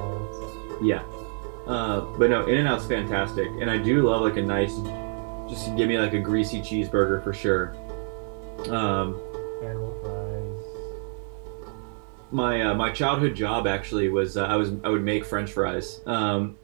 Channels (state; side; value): silent; left; 57 dB below the other